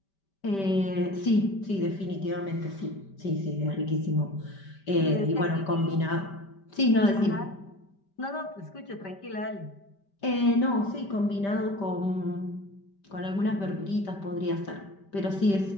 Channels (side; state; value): right; late; 5.1 ms